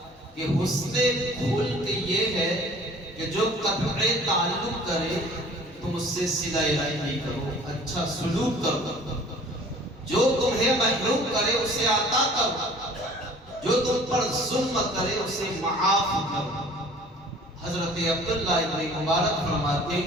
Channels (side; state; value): both; normal; correlation 0.49